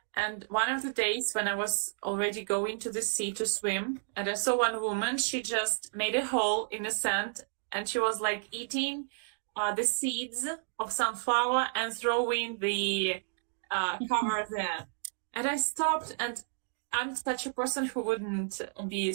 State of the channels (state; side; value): silent; left; digital silence